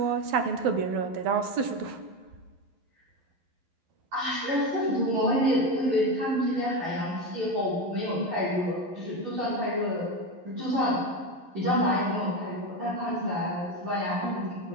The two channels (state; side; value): late; left; 11 ms